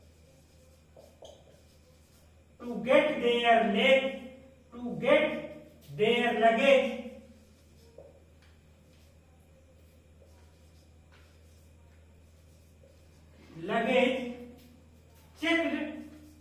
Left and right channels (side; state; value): both; identical; correlation 1.00